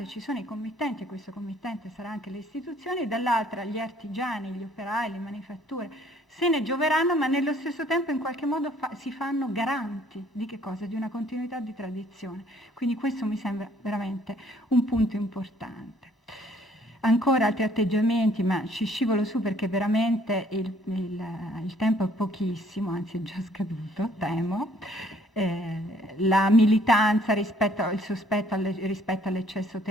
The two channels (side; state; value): both; normal; correlation 0.61